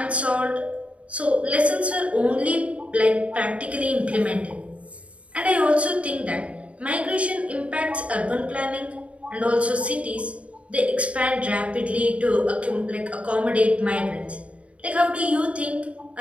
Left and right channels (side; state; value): left; late; 0.064 ms